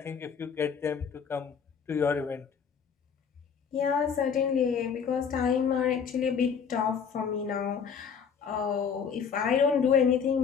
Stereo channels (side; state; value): right; quieter; 6.7 dB